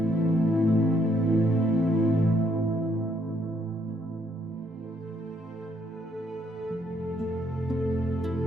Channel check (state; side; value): normal; both; correlation 0.70